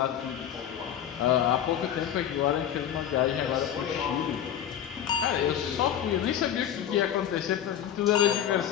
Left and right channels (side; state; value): right; quieter; 9.9 dB